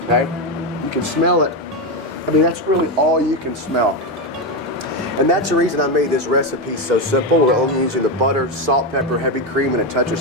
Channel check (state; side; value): normal; both; correlation 0.10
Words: Okay. You can smell it. I mean, that's really all you can smell. And that's the reason I made this recipe so simple. We're only using the butter, salt, pepper, heavy cream, and a touch of